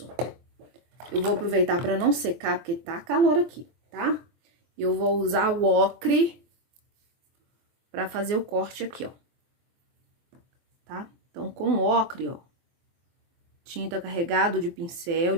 eu vou aproveitar pra não secar, porque tá calor aqui, tá? Eu vou usar o ocre pra fazer o corte aqui, ó. Tá? Então, com ocre, ó, tinta carregado de pincel,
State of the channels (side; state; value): left; late; 23 ms